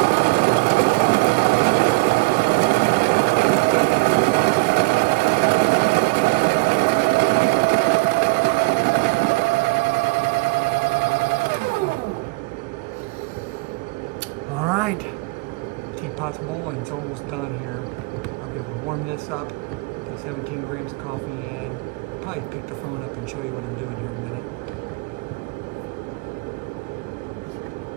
All right, teapot's boiling, it's almost done here. I'll be able to warm this up, put 17 grams of coffee in, probably pick the phone up and show you what I'm doing here in a minute.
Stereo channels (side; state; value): left; quieter; 27.2 dB